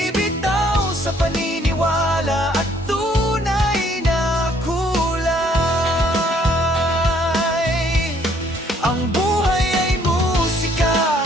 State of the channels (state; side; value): normal; both; correlation 0.64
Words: paniniwala at tunay na kulay. Ang buhay ay musika,